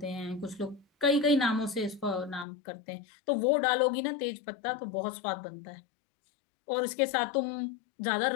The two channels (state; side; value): drops out; right; at 2.5 s